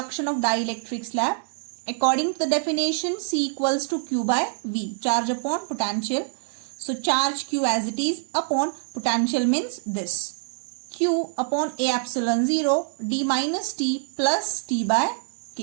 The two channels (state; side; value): silent; left; digital silence